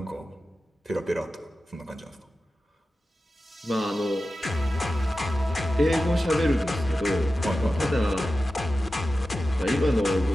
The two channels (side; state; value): both; normal; correlation 0.93